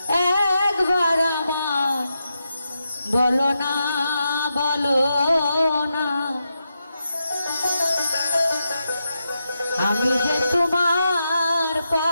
একবার আমার বলো না, বলো না। আমি যে তোমার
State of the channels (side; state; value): both; inverted; correlation -0.86